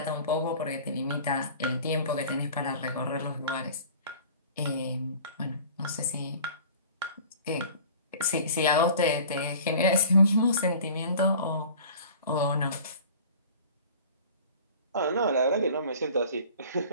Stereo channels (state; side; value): inverted; both; correlation -0.44